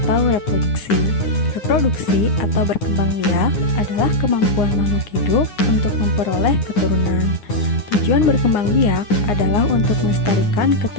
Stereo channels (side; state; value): right; late; 9.7 ms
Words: reproduksi. Reproduksi atau berkembang biak adalah kemampuan makhluk hidup untuk memperoleh keturunan. Tujuan berkembang biak adalah untuk melestarikan